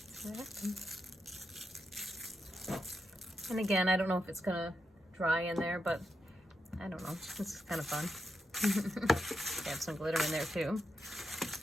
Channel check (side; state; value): both; normal; correlation 0.85